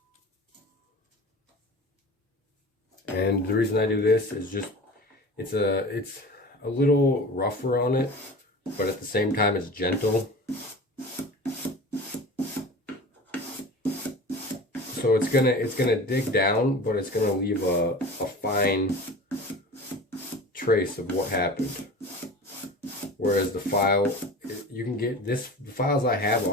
And the reason I do this is just, it's a little rougher on it, but at the same time it's gentle. So it's gonna dig down, but it's gonna leave a fine trace of what happened. Whereas the file, you can get this, the files I have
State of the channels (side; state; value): both; normal; correlation 0.36